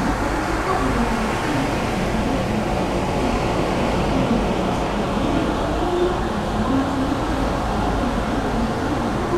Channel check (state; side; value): identical; both; correlation 1.00